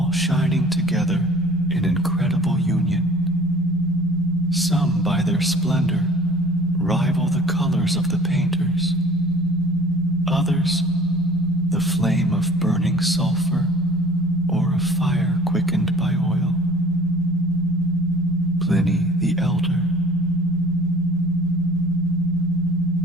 shining together in incredible union. Some, by their splendor, rival the colors of the painters. Others, the flame of burning sulfur or of fire quickened by oil. Pliny the Elder.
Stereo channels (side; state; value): both; normal; correlation 0.49